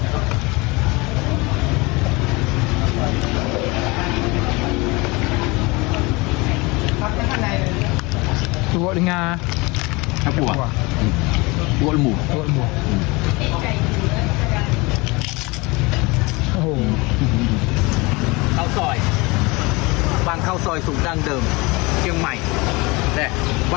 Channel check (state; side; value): quieter; right; 25.0 dB